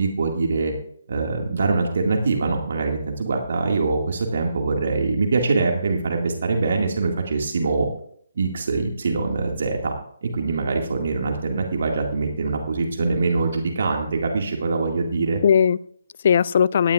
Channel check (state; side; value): inverted; both; correlation -0.78